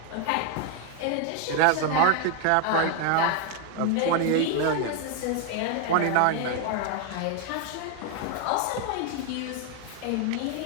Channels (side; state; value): both; different; correlation 0.01